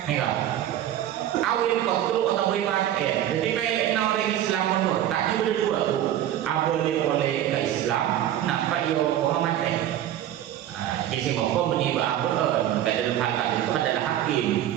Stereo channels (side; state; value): left; quieter; 11.8 dB